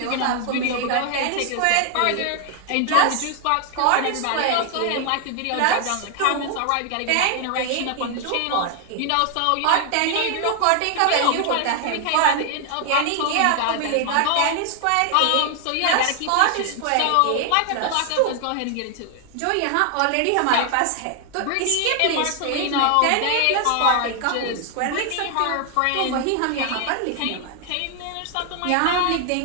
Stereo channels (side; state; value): both; different; correlation 0.00